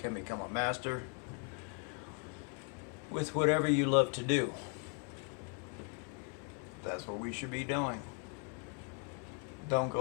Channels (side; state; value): right; quieter; 38.7 dB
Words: become a master with whatever you love to do. That's what we should be doing. Don't